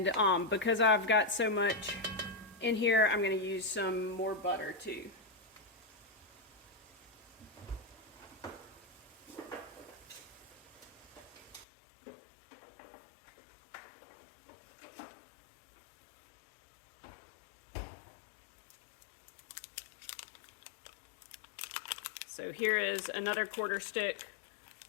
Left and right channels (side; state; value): right; drops out; at 11.7 s